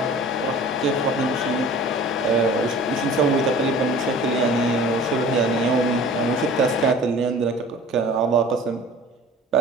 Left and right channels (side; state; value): both; normal; correlation 0.44